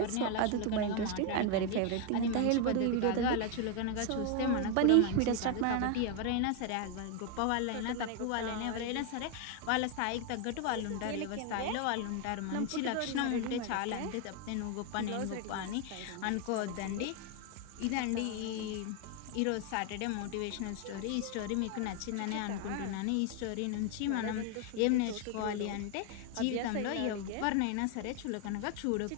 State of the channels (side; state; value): both; different; correlation 0.01